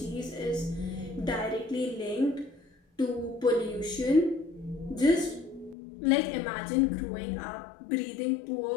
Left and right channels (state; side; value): drops out; right; at 5.8 s